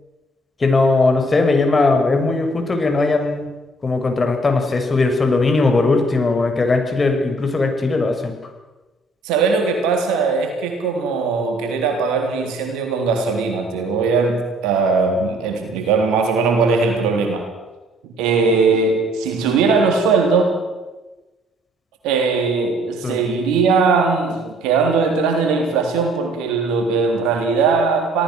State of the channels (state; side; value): normal; both; correlation 0.59